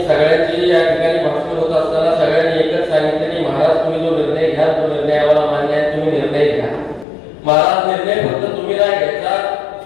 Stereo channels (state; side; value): drops out; right; at 7.1 s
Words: सगळ्यांची या ठिकाणी भाषण होत असताना सगळ्यांनी एकच सांगितलं की महाराज तुम्ही जो निर्णय घ्या तो निर्णय आम्हाला मान्य आहे, तुम्ही निर्णय घ्या महाराज. निर्णय फक्त तुम्ही नाही घ्यायचा,